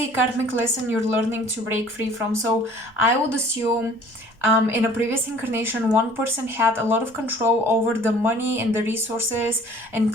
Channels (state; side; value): normal; both; correlation 0.51